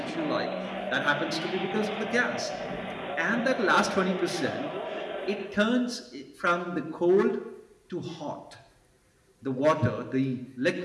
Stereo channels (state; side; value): identical; both; correlation 1.00